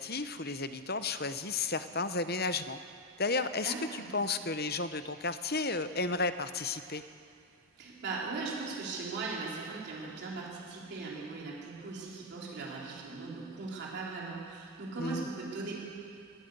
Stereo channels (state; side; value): normal; both; correlation 0.02